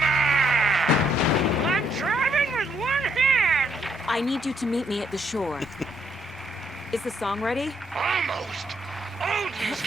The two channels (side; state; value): both; normal; correlation 0.72